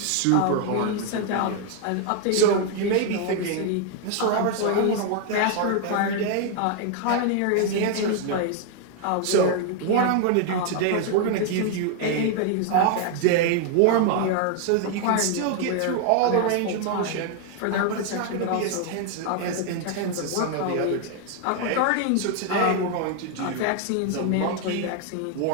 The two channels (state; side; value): different; both; correlation 0.00